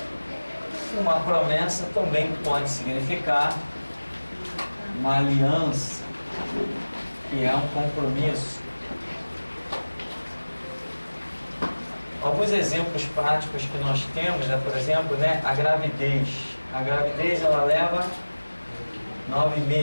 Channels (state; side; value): inverted; both; correlation -1.00